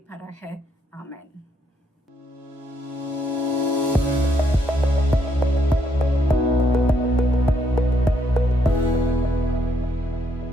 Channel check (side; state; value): both; normal; correlation 0.73